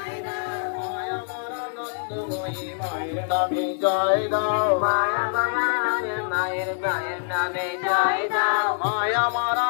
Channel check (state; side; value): silent; right; digital silence